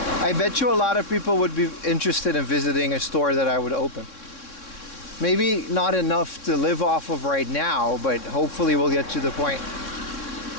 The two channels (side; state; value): right; late; 3.6 ms